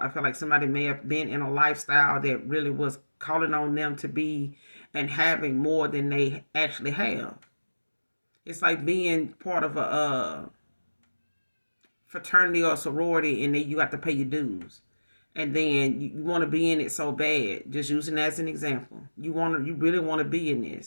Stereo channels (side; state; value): both; inverted; correlation -1.00